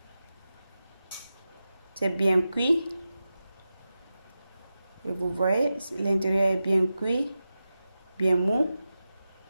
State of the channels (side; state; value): both; inverted; correlation -0.93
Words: C'est bien cuit. Et vous voyez, l'intérieur est bien cuit, bien mou,